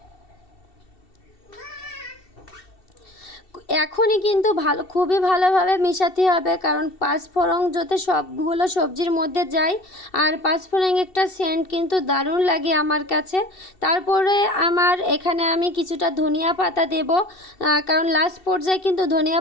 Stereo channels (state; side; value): late; right; 2.7 ms